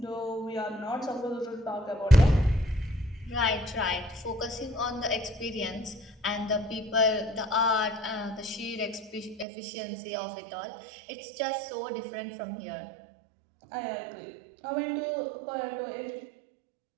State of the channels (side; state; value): left; drops out; at 9.5 s